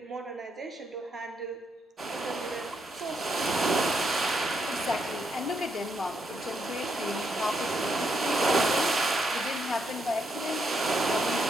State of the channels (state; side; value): normal; both; correlation 0.78